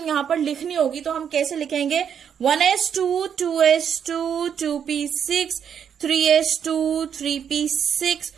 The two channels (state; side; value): quieter; left; 8.1 dB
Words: यहां पर लिखनी होगी तो हम कैसे लिखेंगे, 1s2 2s2 2p6 3s2 3p6